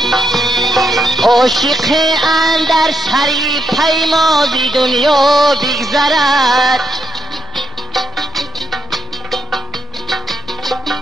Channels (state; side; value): noise; left; rumble, 21 dB below the sound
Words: عاشق اندر سری پیمازی دنیا بگذرد،